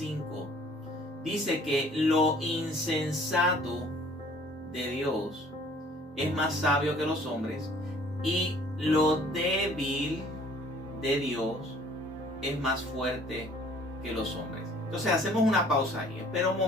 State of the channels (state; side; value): normal; both; correlation 0.55